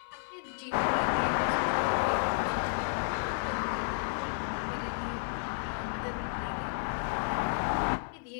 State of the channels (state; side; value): silent; right; digital silence